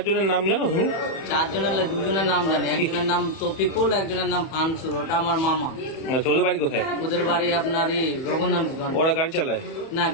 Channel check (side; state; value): right; late; 31 ms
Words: জনের নাম জানো তুমি? 4 জনের 2 জনের নাম জানি। একজনের নাম তফিকুল, একজনের নাম ফানসুর, ওটা আমার মামা। আচ্ছা, ওদের বাড়ি কোথায়? ওদের বাড়ি আপনার রঘুনাথগঞ্জ। ওরা গাড়ি চালায়? না,